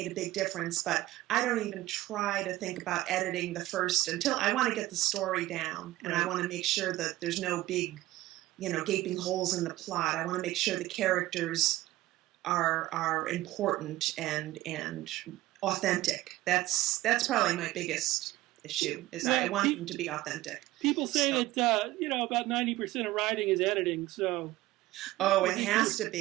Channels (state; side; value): quieter; left; 16.9 dB